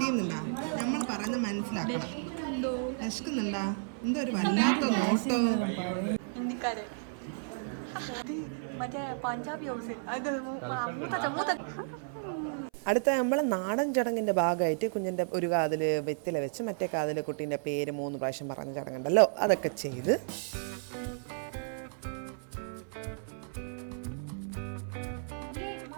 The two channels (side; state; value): left; silent; 56 dB below the other